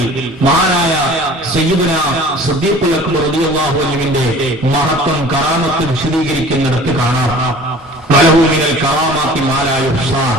മഹാനായ സയ്യിദുനാ സിദ്ദീഖുൽ അക്ബർ റളിയല്ലാഹു അൻഹുവിന്റെ മഹത്വം കറാമത്ത് വിശദീകരിക്കുന്നിടത്ത് കാണാം. വലഹു മിനൽ കറാമാത്തി മാ ലാ യുഹ്സാ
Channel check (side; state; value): both; normal; correlation 0.46